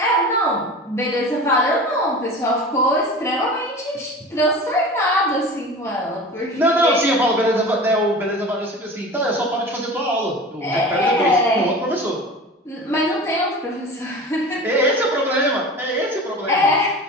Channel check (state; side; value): normal; both; correlation 0.36